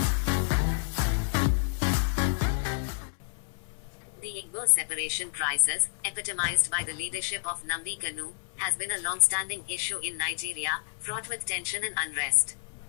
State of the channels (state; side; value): silent; right; 58 dB below the other